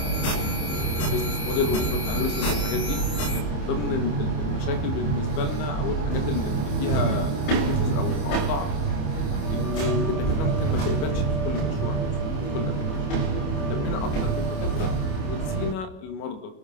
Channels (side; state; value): right; late; 27 ms